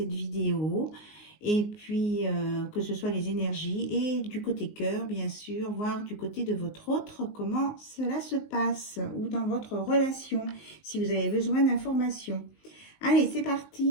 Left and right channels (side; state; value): right; late; 19 ms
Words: vidéo. Et puis, que ce soit les énergies et du côté cœur, bien sûr, voir du côté de votre autre, comment cela se passe, ou dans votre relation, si vous avez besoin d'informations. Allez, c'est